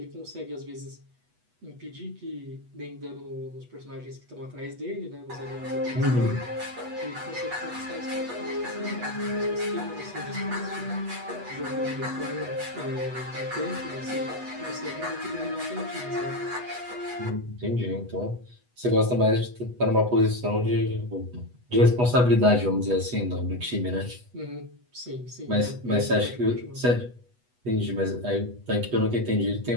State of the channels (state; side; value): late; left; 8.1 ms